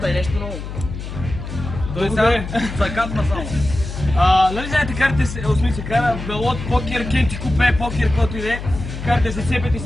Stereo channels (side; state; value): left; noise; hum, 8 dB below the sound